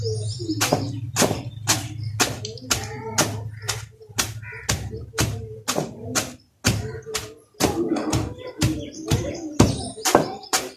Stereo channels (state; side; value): identical; both; correlation 1.00